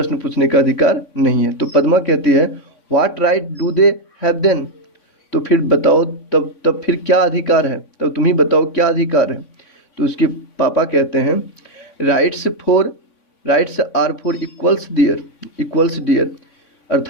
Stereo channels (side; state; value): right; late; 3.5 ms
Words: पूछने का अधिकार नहीं है। तो पद्मा कहती है what right do they have then, तो फिर बताओ तब फिर क्या अधिकार है, तब तुम ही बताओ क्या अधिकार है। तो उसके पापा कहते हैं rights are for equals dear,